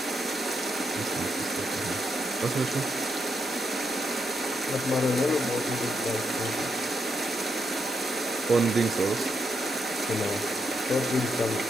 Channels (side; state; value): both; normal; correlation 0.81